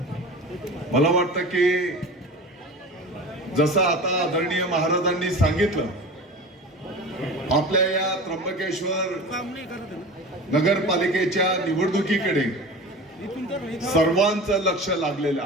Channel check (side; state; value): both; normal; correlation 0.34